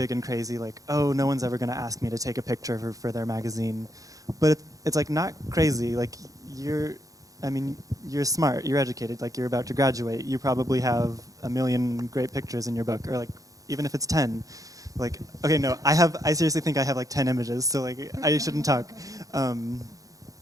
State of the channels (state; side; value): late; left; 0.17 ms